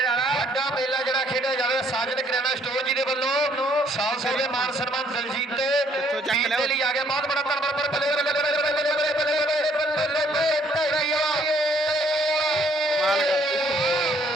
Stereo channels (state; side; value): normal; both; correlation 0.65